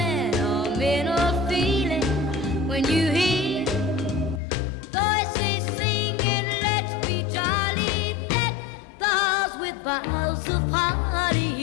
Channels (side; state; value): right; drops out; at 4.4 s